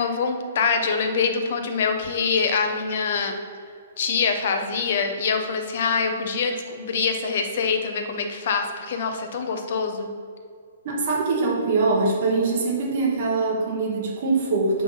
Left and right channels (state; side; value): inverted; both; correlation -0.53